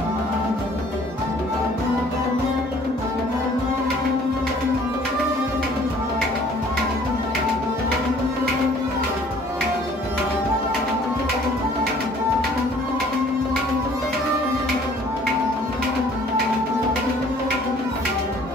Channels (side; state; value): both; normal; correlation 0.55